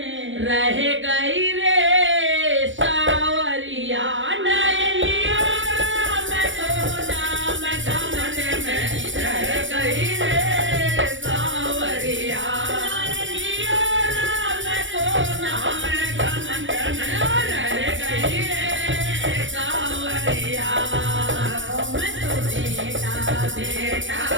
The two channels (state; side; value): late; left; 0.56 ms